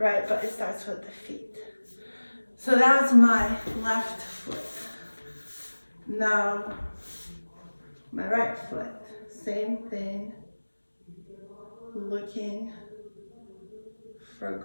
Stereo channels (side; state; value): both; inverted; correlation -1.00